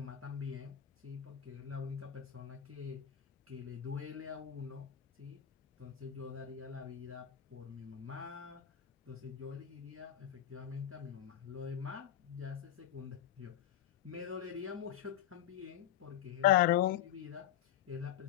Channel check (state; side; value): quieter; right; 11.1 dB